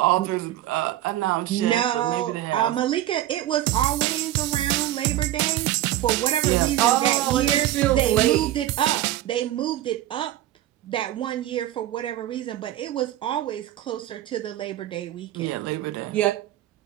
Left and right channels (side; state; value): left; quieter; 13.7 dB